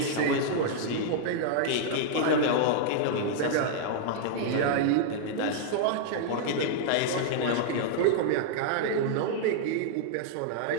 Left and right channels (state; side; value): different; both; correlation -0.01